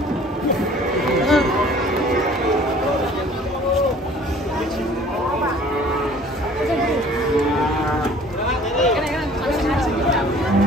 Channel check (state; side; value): normal; both; correlation 0.51